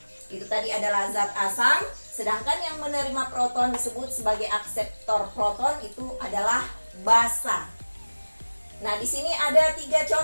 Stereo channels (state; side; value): inverted; both; correlation -1.00